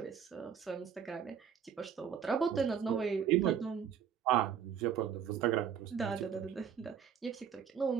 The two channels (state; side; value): quieter; left; 7.9 dB